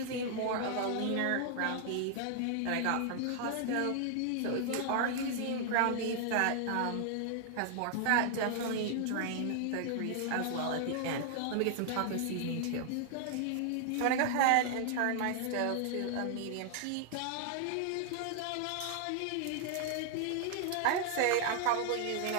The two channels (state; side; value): different; both; correlation 0.00